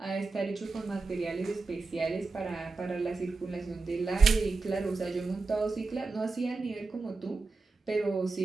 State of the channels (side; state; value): left; quieter; 4.0 dB